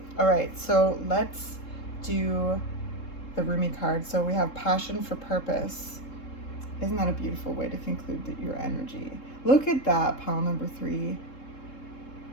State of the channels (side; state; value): right; late; 3.7 ms